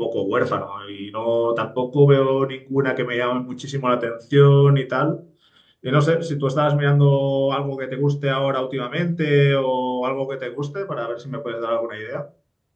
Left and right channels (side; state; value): both; identical; correlation 1.00